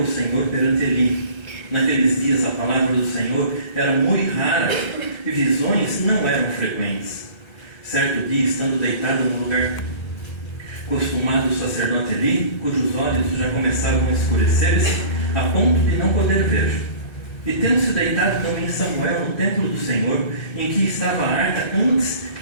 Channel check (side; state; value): right; late; 1.3 ms